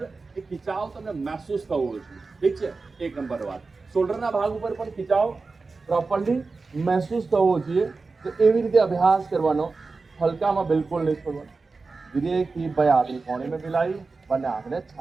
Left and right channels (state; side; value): quieter; left; 4.0 dB